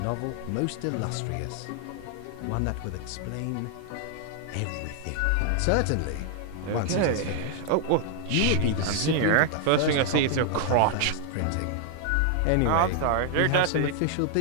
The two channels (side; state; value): both; different; correlation 0.00